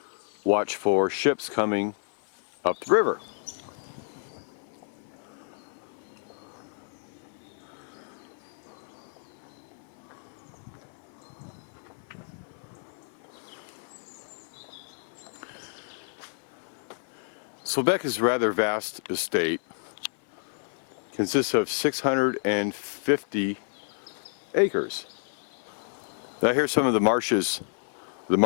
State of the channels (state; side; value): silent; right; 55 dB below the other